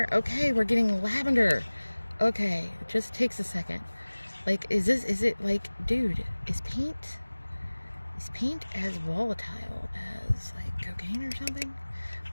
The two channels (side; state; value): both; inverted; correlation -1.00